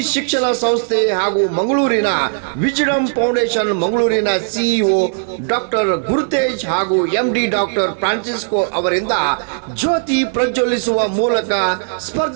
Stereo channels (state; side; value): silent; left; digital silence